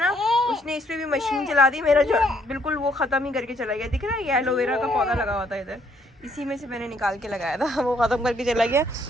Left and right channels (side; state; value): both; normal; correlation 0.68